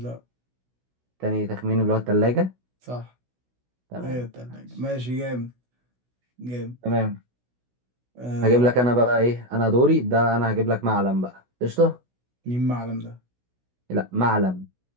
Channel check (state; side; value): late; left; 16 ms